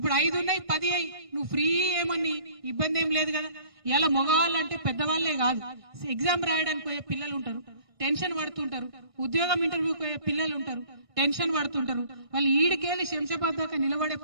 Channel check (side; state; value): left; late; 1.5 ms